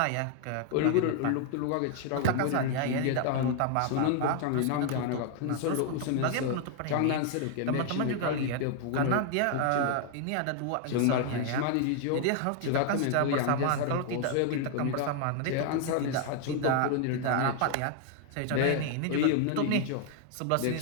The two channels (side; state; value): both; different; correlation 0.00